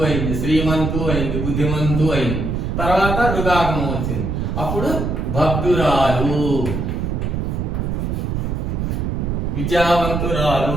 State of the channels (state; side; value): noise; right; rumble, 1 dB below the sound